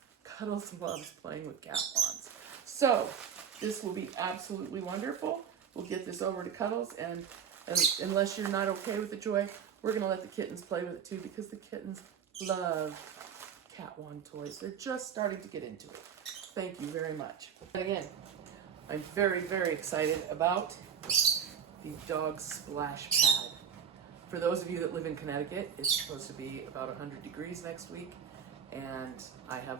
Cuddles loves playing with cat wands. So this will be absolutely wonderful. We'll get this over to Cuddles, and unless you're not okay with the Joy, we're gonna let the kittens play with it too, because the kittens love cat wand toys. They're just starting to get into it. Thank you very much. And again, I'm very, very excited about the dog splash pad. For those of you that live in Connecticut, it's supposed to be about 100 degrees next week, and I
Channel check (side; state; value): left; quieter; 7.8 dB